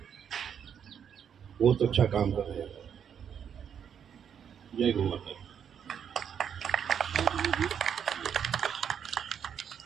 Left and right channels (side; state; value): left; quieter; 8.1 dB